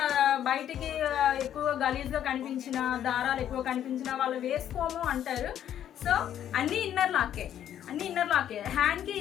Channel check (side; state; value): right; quieter; 10.5 dB